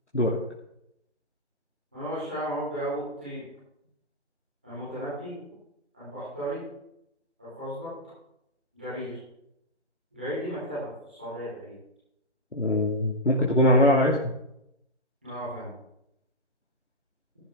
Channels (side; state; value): both; normal; correlation -0.02